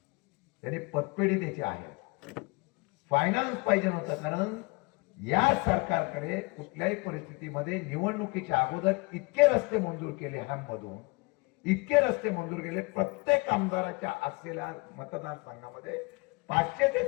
त्यांनी पतपेढी त्याची आहे. फायनान्स पाहिजे नव्हतं, कारण या सरकारकडे कुठल्याही परिस्थितीमध्ये निवडणुकीच्या अगोदर इतके रस्ते मंजूर केले, मधून इतके रस्ते मंजूर केले. प्रत्येक आमदाराच्या असलेल्या मतदारसंघामध्ये 500 ते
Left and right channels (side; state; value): right; quieter; 27.6 dB